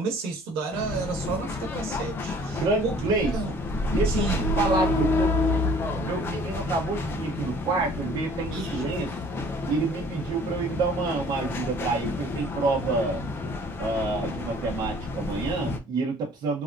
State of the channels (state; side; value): normal; both; correlation 0.53